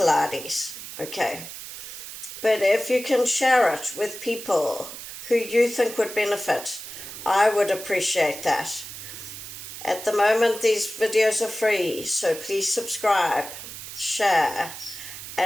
okay? But if you can share it with people who you think would benefit, I would appreciate that. At the moment, these videos are free, so please subscribe, share,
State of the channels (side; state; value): right; noise; hiss, 11 dB below the sound